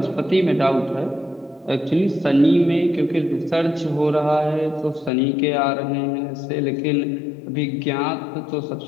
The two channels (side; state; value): right; drops out; at 5.1 s